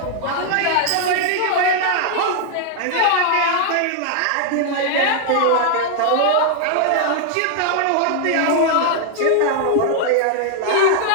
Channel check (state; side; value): different; both; correlation 0.00